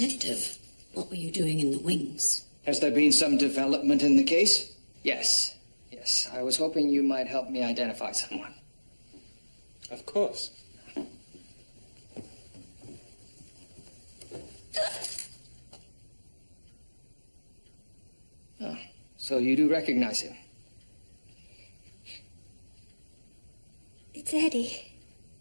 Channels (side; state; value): both; inverted; correlation -1.00